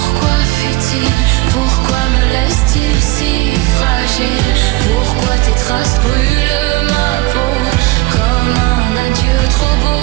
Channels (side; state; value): left; quieter; 20.8 dB